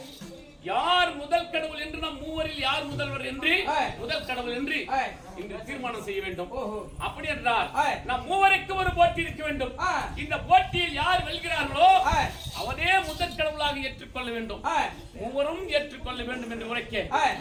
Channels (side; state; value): both; identical; correlation 1.00